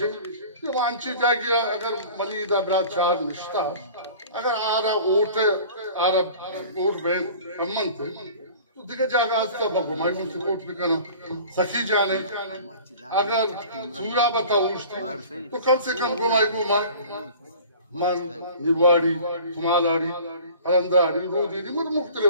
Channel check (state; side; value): inverted; both; correlation -0.44